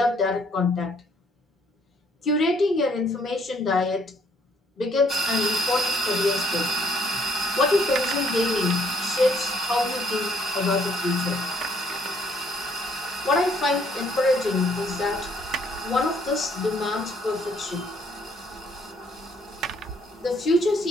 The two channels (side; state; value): both; normal; correlation 0.66